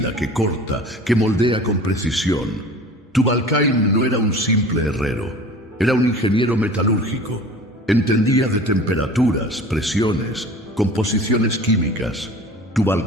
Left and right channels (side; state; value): both; normal; correlation 0.41